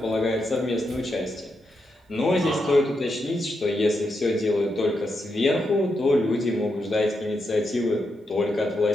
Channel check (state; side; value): normal; both; correlation 0.84